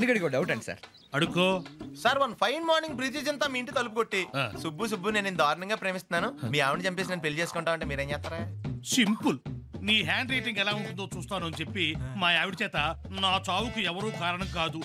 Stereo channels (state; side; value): identical; both; correlation 1.00